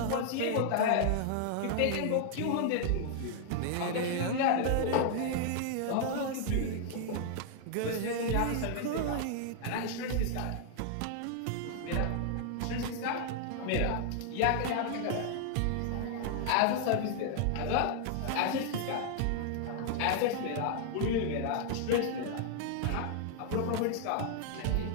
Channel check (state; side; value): different; both; correlation 0.00